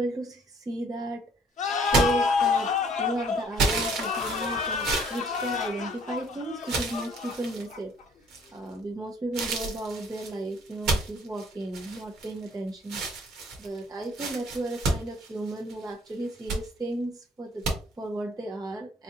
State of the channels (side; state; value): both; normal; correlation 0.58